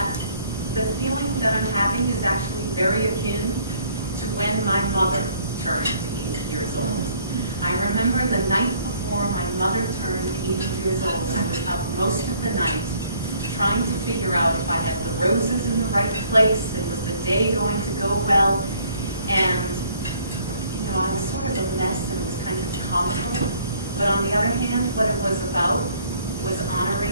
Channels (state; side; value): inverted; both; correlation -0.61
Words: the feeling that I'm having is actually very akin to when my mother turned 80 years old. I remember the night before my mother turned 80 years old, I was up most of the night trying to figure out if I had the roses in the right place and was the day going to go well. And, you know, I was sort of a mess and it was kind of comical. But on the other hand, what it was about was